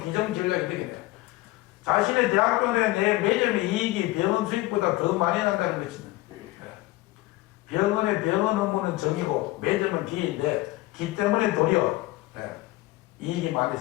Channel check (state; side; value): quieter; right; 18.8 dB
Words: 기정 전략이 되겠네요. 자신의 대학교 내 매점의 이익이 병원 수익보다 더 많이 난다는 것입니다. 병원의 병원 업무는 정이고 매점은 기인데 기 때문에 도리어 이익이 많이